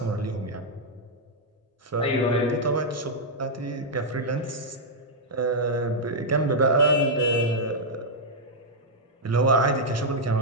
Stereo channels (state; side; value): normal; both; correlation -0.05